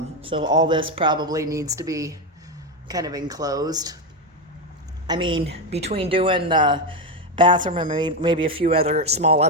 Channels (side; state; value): both; normal; correlation 0.10